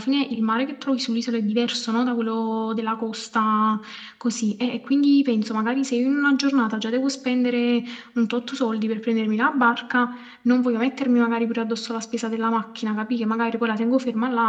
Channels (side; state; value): both; identical; correlation 1.00